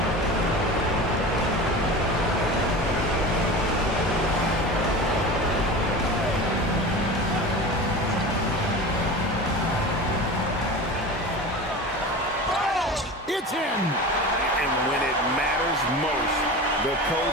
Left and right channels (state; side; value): normal; both; correlation 0.32